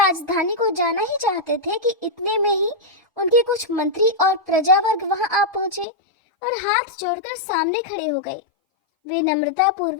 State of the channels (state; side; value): drops out; right; at 5.9 s